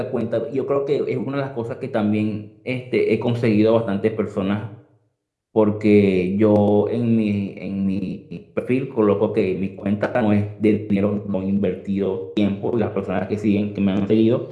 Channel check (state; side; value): identical; both; correlation 1.00